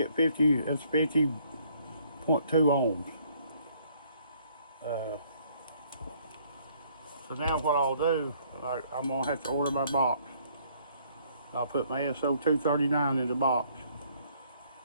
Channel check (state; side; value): inverted; both; correlation -0.64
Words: 50, that's 50.2 ohms. So now what I'll do, I'm going to have to order my box. I'll put my SO239 in the box.